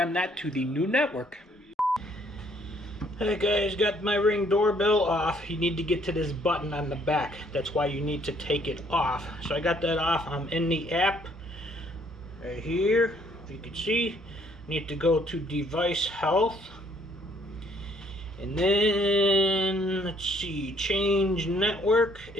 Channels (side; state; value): both; normal; correlation 0.64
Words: that to the new network. Hey guys, got my Ring doorbell off. You need to get to this button on the back. That's why you need to take it off. So I got that off. I'm in the app right here. If you can see, need to go to device health, and then let's see, change network